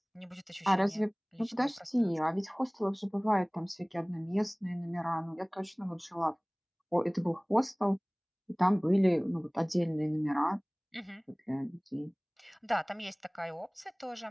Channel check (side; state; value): both; identical; correlation 1.00